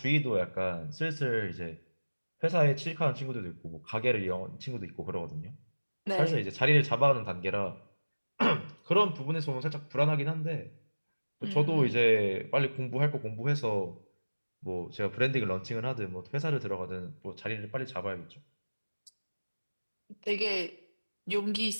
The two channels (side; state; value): both; inverted; correlation -1.00